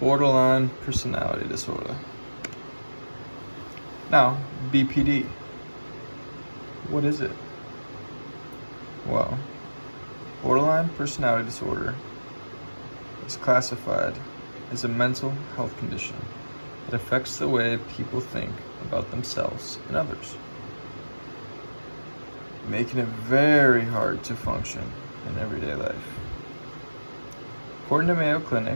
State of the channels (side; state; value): both; inverted; correlation -1.00